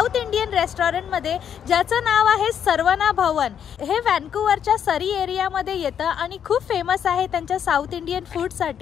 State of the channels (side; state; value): right; quieter; 8.6 dB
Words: इंडियन रेस्टॉरंटमध्ये, ज्याचं नाव आहे सर्वना भवन. हे व्हॅन्कुव्हरच्या सरी एरियामध्ये येतं आणि खूप फेमस आहे त्यांच्या साऊथ इंडियन